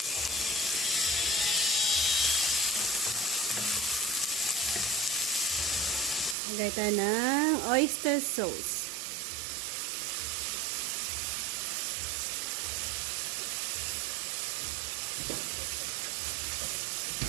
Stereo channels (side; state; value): left; drops out; at 6.4 s